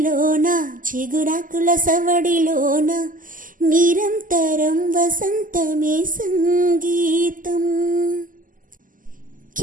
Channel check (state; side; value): late; left; 0.39 ms